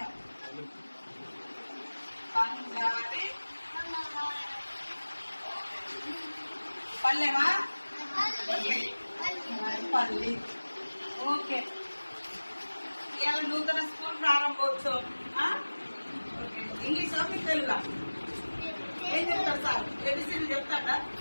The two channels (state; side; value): inverted; both; correlation -1.00